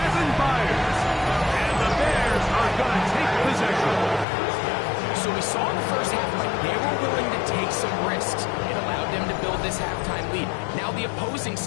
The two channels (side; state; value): right; drops out; at 4.2 s